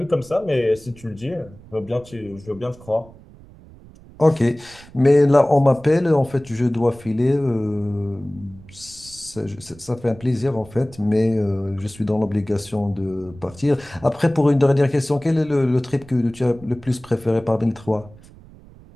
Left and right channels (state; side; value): noise; right; rumble, 22 dB below the sound